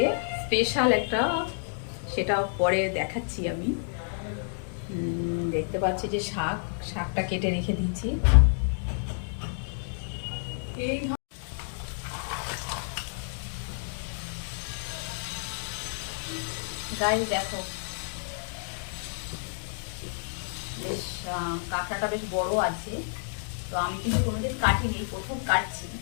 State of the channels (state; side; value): silent; right; digital silence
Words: স্পেশাল একটা, সেটা পরে দেখাচ্ছি আমি। দেখতে পাচ্ছি যে শাকটা কেটে রেখে দিয়েছি। এই গায়ে দেখো, বেশ কাঁকড়াটা বেশ বড় আছে। তো আমি কিন্তু কোনোদিন কাটিনি, প্রথম কাটছি।